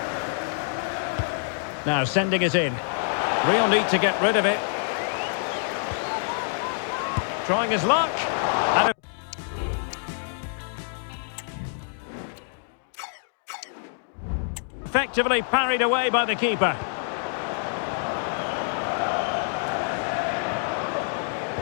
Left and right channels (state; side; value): silent; right; digital silence